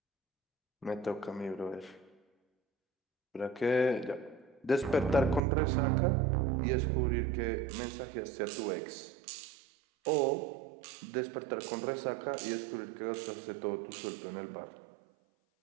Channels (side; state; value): left; drops out; at 5.4 s